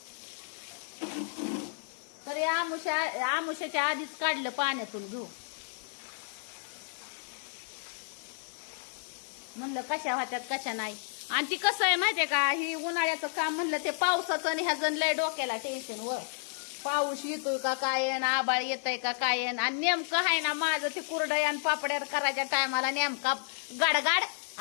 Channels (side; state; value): right; silent; digital silence